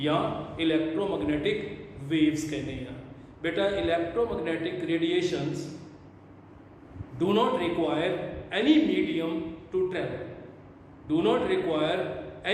ਜਾਂ ਇਲੈਕਟ੍ਰੋਮੈਗਨੈਟਿਕ वेव्स कहते हैं। बेटा electromagnetic radiations do not require any medium to travel, do not require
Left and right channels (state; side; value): identical; both; correlation 1.00